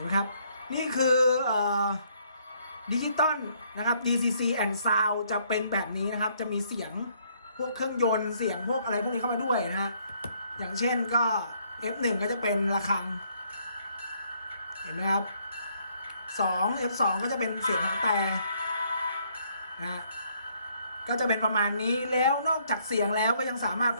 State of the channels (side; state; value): both; inverted; correlation -0.68